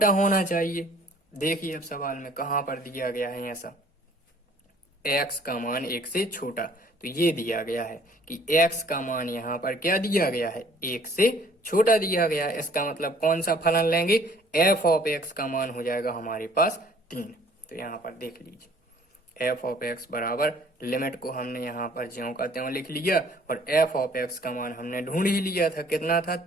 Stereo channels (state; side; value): normal; both; correlation 0.56